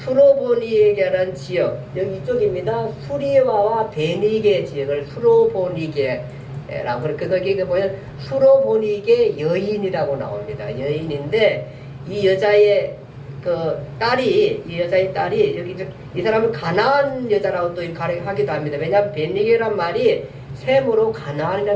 지역, 여기 이쪽입니다. 수리와와 베니게 지역을 수로보니게라고 거기 보면 수로보니게 여인이라고 나옵니다. 여인인데 이 여자의 딸이 여기 이 사람은 가나안 여자라고 또 하기도 합니다. 왜냐하면 베니게란 말이 셈으로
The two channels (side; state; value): both; identical; correlation 1.00